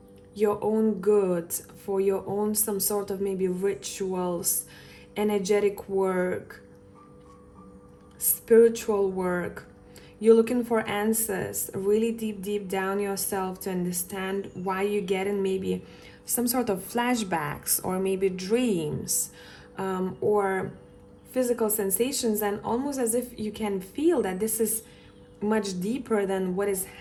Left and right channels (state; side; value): identical; both; correlation 1.00